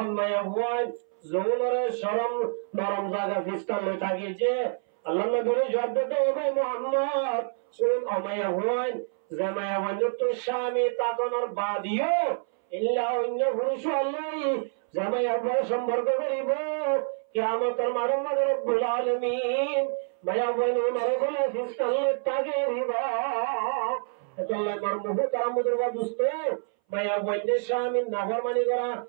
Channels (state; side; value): silent; left; 60 dB below the other